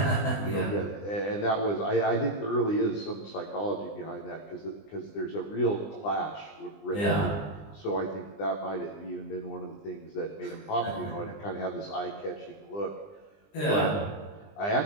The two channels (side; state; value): right; late; 20 ms